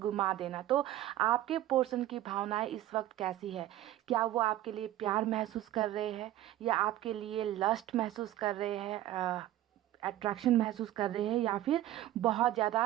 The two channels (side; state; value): left; quieter; 13.9 dB